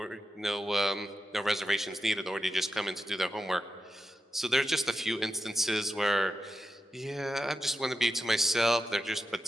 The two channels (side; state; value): both; normal; correlation 0.89